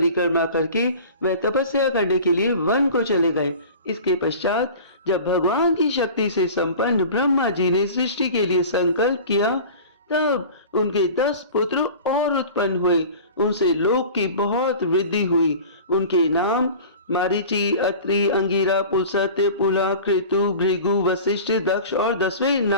करके वह तपस्या करने के लिए वन को चले गए। इसके पश्चात जब भगवान की शक्ति से संपन्न ब्रह्मा जी ने सृष्टि के लिए संकल्प किया, तब उनके 10 पुत्र और उत्पन्न हुए। उनसे लोक की बहुत वृद्धि हुई। उनके नाम मारीचि, अत्रि, अंगिरा, पुलस्त्य, पुला, कृतु, भृगु, वशिष्ठ, दक्ष और 10वें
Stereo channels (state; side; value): inverted; both; correlation -0.39